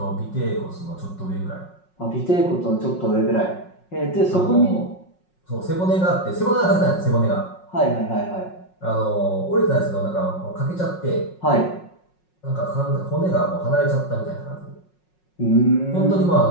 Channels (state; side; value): late; right; 5.5 ms